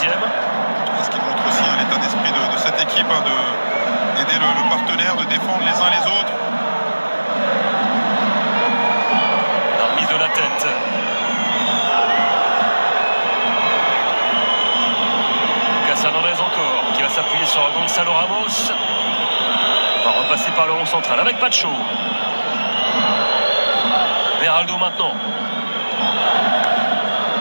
Ce qui montre aussi l'état d'esprit de cette équipe, d'aider le partenaire, de défendre les uns les autres. La remise de la tête. Lucas Hernandez encore, qui va s'appuyer sur Gonzalo Ramos. On va repasser par le rond central avec Pacho. Beraldo maintenant.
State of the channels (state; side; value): inverted; both; correlation -1.00